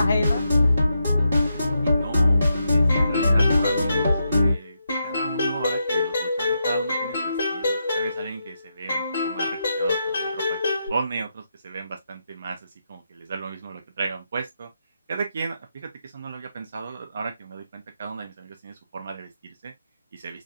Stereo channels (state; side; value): inverted; both; correlation -0.84